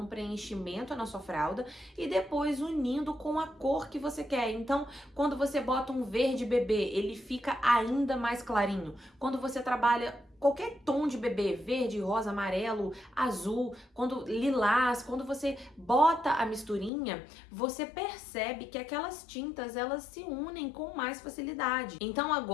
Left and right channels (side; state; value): right; drops out; at 16.9 s